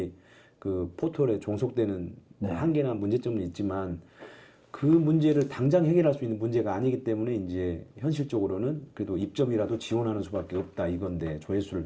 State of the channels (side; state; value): both; identical; correlation 1.00